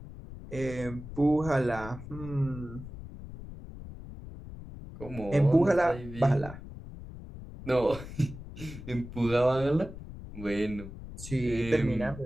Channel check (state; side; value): noise; left; rumble, 13 dB below the sound